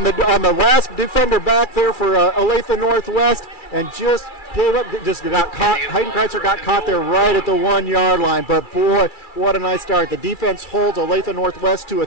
the last defender back there for Olathe-Northwest, and just gave up, just got caught. Hayden Kreitzer got caught there right at the 1-yard line. But boy, what a nice start. The defense holds Olathe-Northwest to a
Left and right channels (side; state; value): right; late; 2.4 ms